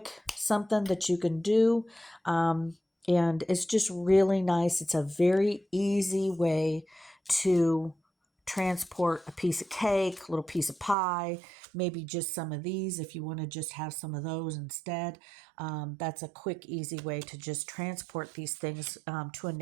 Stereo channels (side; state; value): left; drops out; at 11.0 s